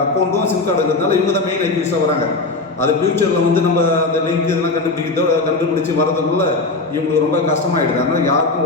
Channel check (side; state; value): right; quieter; 3.4 dB